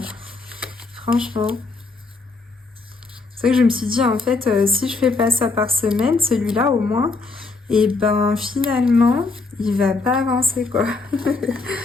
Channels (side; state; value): right; quieter; 3.8 dB